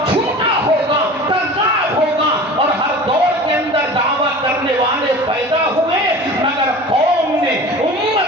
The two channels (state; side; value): normal; both; correlation 0.38